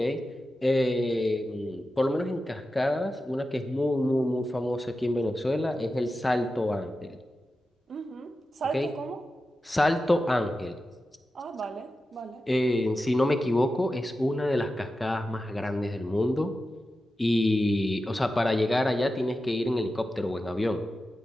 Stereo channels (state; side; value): normal; both; correlation 0.92